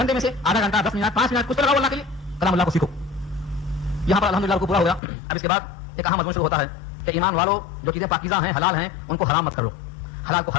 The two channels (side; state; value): right; drops out; at 5.0 s